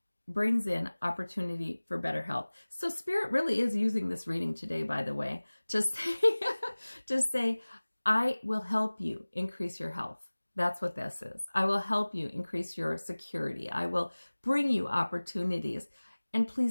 brings in opportunity for better health. So Spirit really is using this reading today, by the way, to say, I will help you increase your health. That's what this is. I will help you increase your security. I will bring you opportunities. And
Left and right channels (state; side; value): inverted; both; correlation -1.00